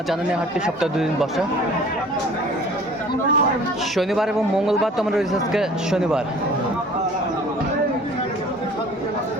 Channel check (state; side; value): normal; both; correlation 0.49